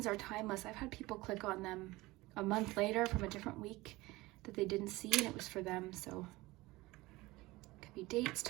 are timeless. I've had people click on them a month later from a different week that they didn't see, and it was for them. So it could be dates,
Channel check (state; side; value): quieter; left; 20.4 dB